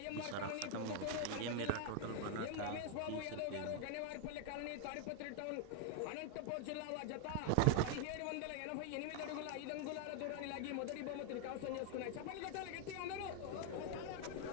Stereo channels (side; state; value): both; different; correlation 0.00